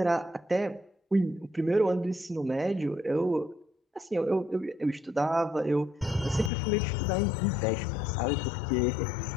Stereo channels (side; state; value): right; drops out; at 6.5 s